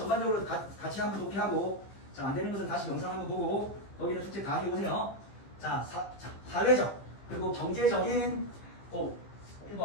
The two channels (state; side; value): late; right; 15 ms